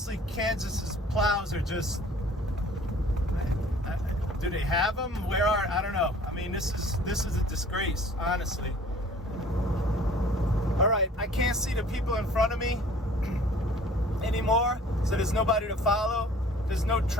Kansas's plows are just, do they have them? Where are, I don't know. I mean, this is a disgrace, honestly. All right, I can't see the people in front of me anymore, so there's nobody to follow. There's no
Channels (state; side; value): normal; both; correlation 0.51